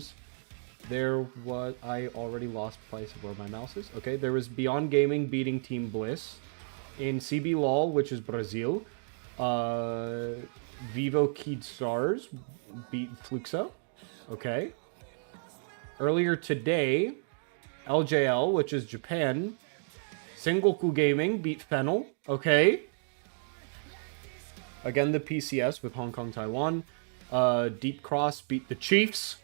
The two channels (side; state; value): left; silent; digital silence